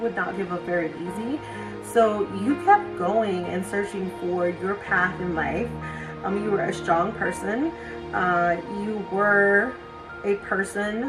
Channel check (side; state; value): both; identical; correlation 1.00